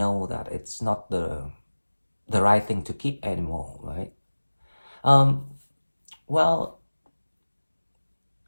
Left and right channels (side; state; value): both; inverted; correlation -1.00